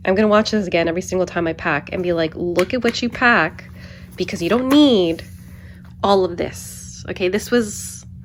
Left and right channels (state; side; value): identical; both; correlation 1.00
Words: I'm gonna watch this again every single time I pack and be like, look at what you pack, because you don't need all of this. Okay, this was